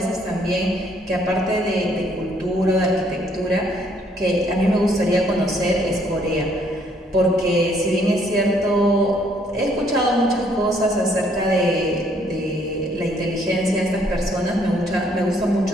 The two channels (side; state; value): both; normal; correlation 0.66